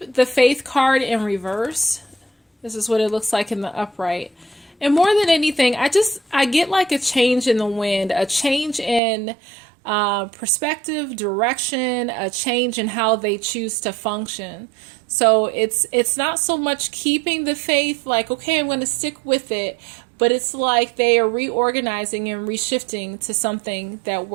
the faith card in reverse. This is what it looks like in the upright. And more than anything, I get like a change in the wind, a change in perspective, direction, a change in how they choose to function. So it's not so much keeping the faith, like, okay, I'm going to stick with it, but it's like they are reorganizing and reshifting to something that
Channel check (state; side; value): drops out; left; at 9.0 s